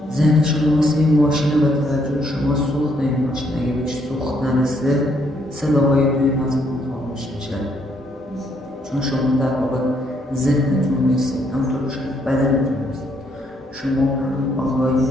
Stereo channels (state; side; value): normal; both; correlation 0.71